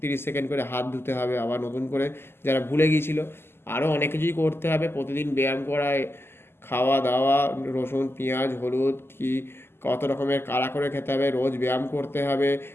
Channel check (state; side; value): late; right; 0.12 ms